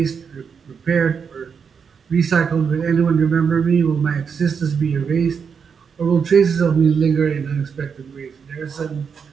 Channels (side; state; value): left; quieter; 6.4 dB